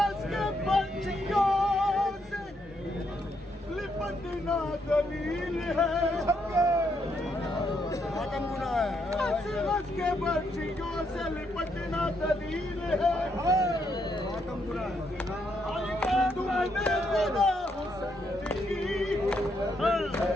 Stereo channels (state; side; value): normal; both; correlation 0.76